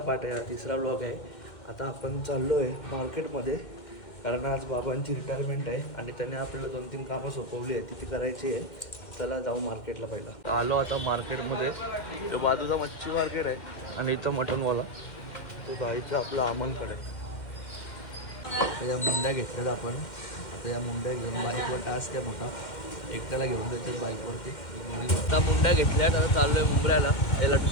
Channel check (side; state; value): right; late; 2.1 ms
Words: आहे, हा तिसरा ब्लॉग आहे। आता आपण चाललो आहे मार्केटमध्ये, कारण आज बाबांची रिटायरमेंट आहे आणि त्याने आपल्याला 2-3 कामं सोपवली आहे, ती करायची आहे। चला जाऊ मार्केटला। पहिला आलो आता मार्केटमध्ये, तो बाजूचा मच्छी मार्केट आहे आणि इथं मटनवाला तो जायचं आपलं अमनकडे। त्या मुंड्या घेतल्यात आपण, आता या मुंड्या घेऊन बाईकवर टास्क आहे मोठा, एकट्याला घेऊन जायचं बाईकवरती। आता मुंड्या घेतल्यात, आता चाललो आहे मुंबऱ्याला। हे